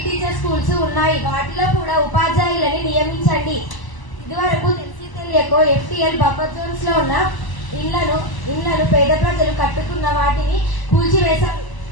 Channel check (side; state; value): right; late; 1.0 ms